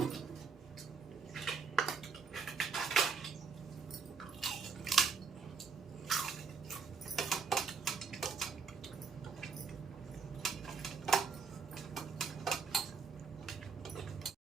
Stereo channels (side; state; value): left; quieter; 5.5 dB